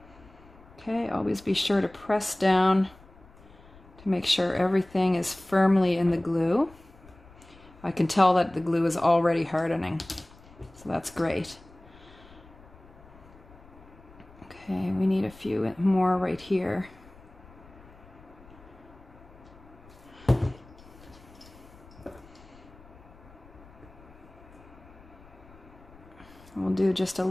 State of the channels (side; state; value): left; noise; rumble, 23 dB below the sound